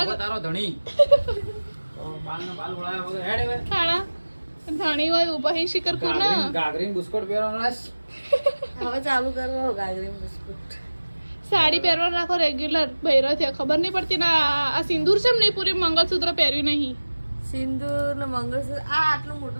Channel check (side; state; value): both; inverted; correlation -1.00